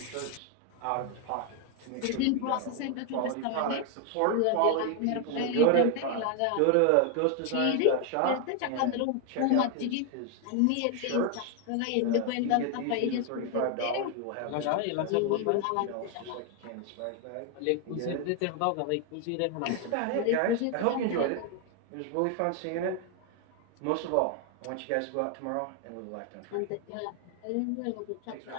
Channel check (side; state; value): both; different; correlation 0.01